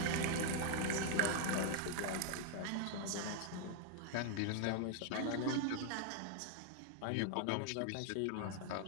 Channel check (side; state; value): both; different; correlation 0.00